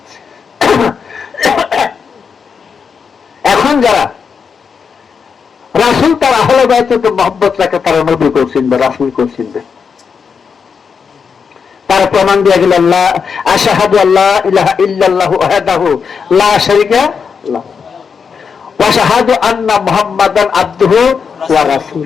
এখন যারা রাসূল তার আহলে বায়াতে মহব্বত রাখে, তারা নবী কেও চিনবে, রাসূল কেও চিনবে। তার প্রমাণ দিয়ে গেল, আল্লাহ আশহাদু আল্লা ইলাহা ইল্লাল্লাহু ওয়াহদাহু লা শারীকা লাহু ওয়া আশহাদু আন্না মুহাম্মাদান আবদুহু ওয়া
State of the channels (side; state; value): right; quieter; 6.1 dB